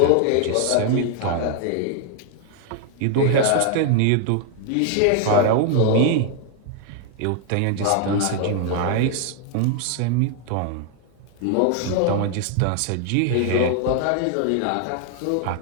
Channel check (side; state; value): both; different; correlation 0.00